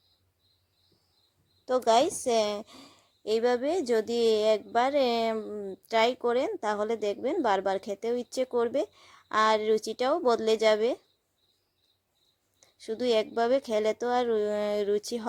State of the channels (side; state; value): both; identical; correlation 1.00